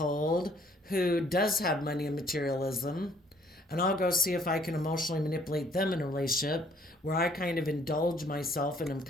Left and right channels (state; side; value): normal; both; correlation 0.61